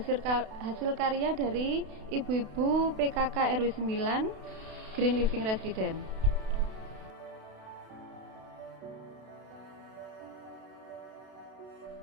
karya dari ibu-ibu PKK RW 9 Green Living Residen.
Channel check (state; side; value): late; left; 32 ms